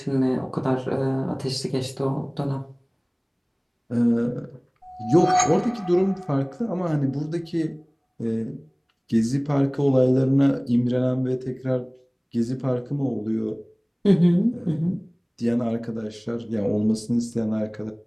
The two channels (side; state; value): both; identical; correlation 1.00